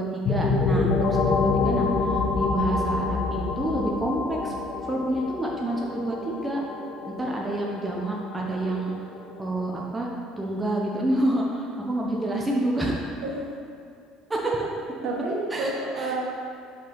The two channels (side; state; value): both; normal; correlation 0.64